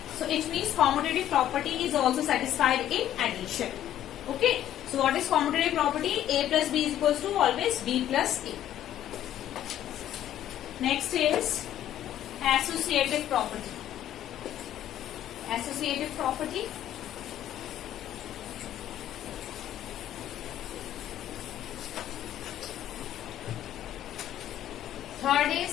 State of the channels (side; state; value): right; quieter; 11.8 dB